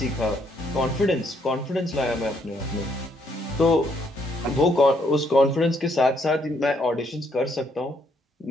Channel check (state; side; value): normal; both; correlation 0.71